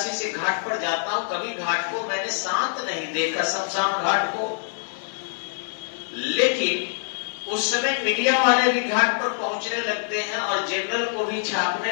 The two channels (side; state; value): right; silent; 62 dB below the other